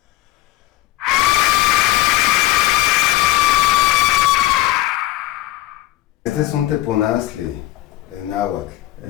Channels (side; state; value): right; quieter; 16.6 dB